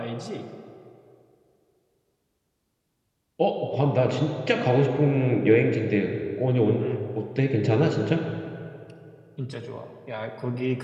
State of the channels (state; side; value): identical; both; correlation 1.00